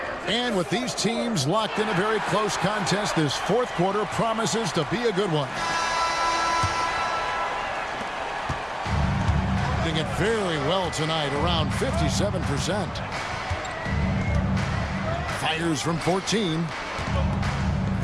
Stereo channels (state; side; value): identical; both; correlation 1.00